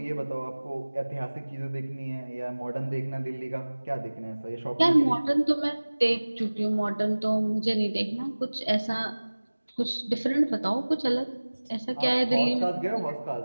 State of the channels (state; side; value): inverted; both; correlation -1.00